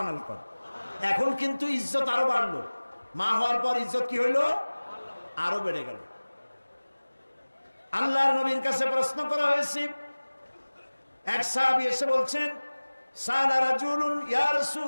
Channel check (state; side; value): inverted; both; correlation -1.00